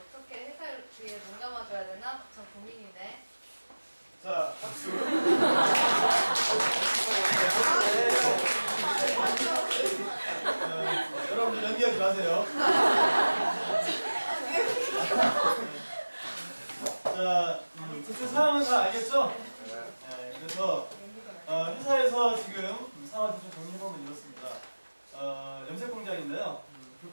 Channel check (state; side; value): inverted; both; correlation -1.00